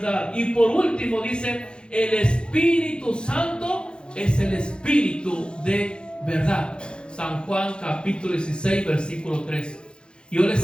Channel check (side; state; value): right; late; 0.052 ms